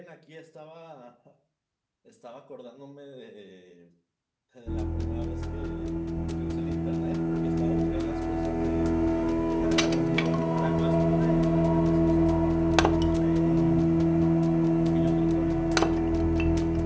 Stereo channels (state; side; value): identical; both; correlation 1.00